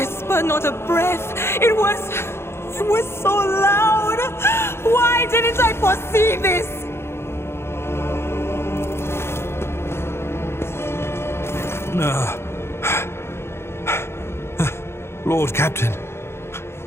not a breath. It was so loud. Why didn't I foresee this? Lord Captain.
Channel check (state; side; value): late; right; 0.12 ms